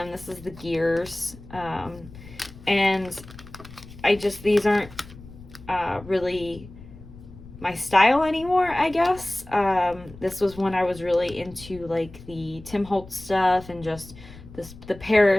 This is the gears. And these aren't really my style anymore, I guess. This was when I was really into like the Tim Holtz stuff and just the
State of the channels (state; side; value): noise; left; rumble, 18 dB below the sound